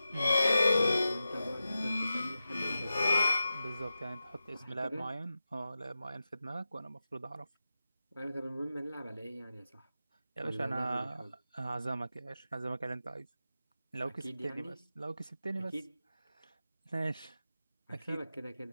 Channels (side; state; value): both; inverted; correlation -0.93